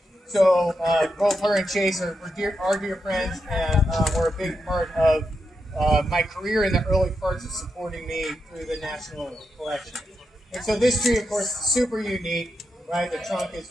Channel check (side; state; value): both; normal; correlation 0.85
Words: So both her and Chase are dear friends, and were a big part of my career in the early parts of supporting me through the national collection. And so this tree, of course, is super unique, right? The trunk